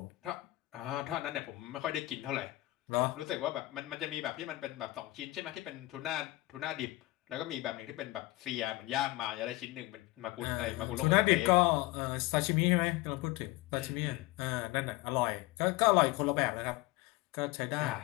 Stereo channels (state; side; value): quieter; right; 19.4 dB